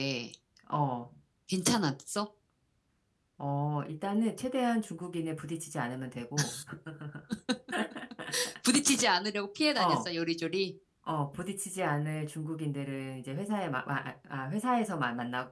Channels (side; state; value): both; identical; correlation 1.00